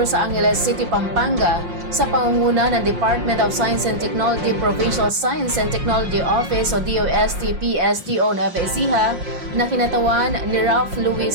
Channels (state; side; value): late; left; 5.6 ms